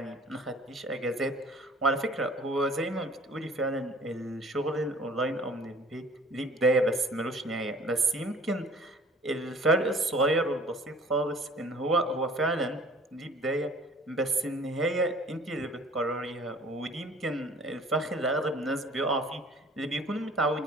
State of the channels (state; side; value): normal; both; correlation 0.51